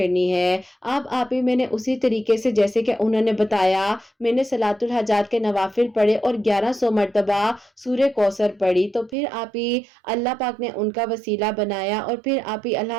ہے۔ اب آپ ہی میں نے اسی طریقے سے جیسے کہ انہوں نے بتایا میں نے صلاۃ الحاجات کے نوافل پڑھے اور 1100 مرتبہ سورہ کوثر پڑھی، تو پھر آپ ہی اللہ پاک نے ان کا وسیلہ بنایا اور پھر آپ ہی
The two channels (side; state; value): left; drops out; at 9.2 s